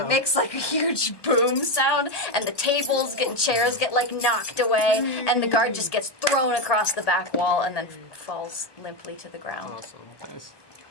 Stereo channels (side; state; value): right; late; 1.2 ms